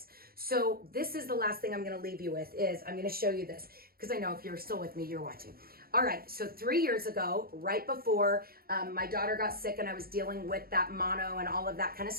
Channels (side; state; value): left; late; 0.44 ms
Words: So this is the last thing I'm going to leave you with, is I'm going to show you this, because I know if you're still with me, you're watching. All right, so 3 years ago, right before my daughter got sick and I was dealing with that mono and all of that kind of